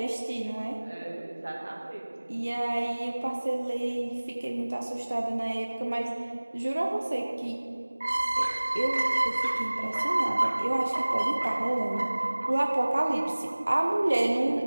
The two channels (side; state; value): both; inverted; correlation -1.00